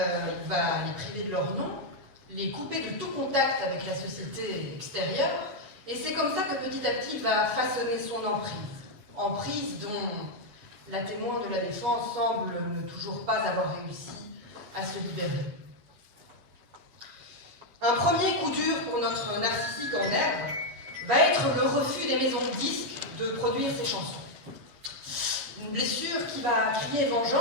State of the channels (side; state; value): left; late; 7.9 ms